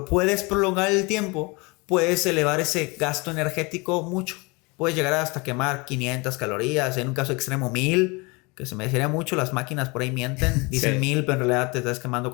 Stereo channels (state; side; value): quieter; right; 27.1 dB